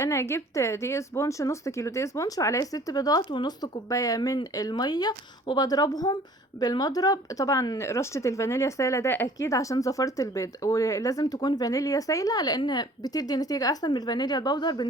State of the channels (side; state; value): both; normal; correlation 0.51